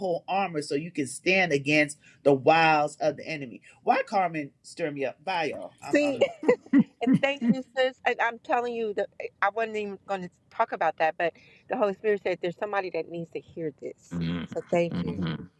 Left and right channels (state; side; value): identical; both; correlation 1.00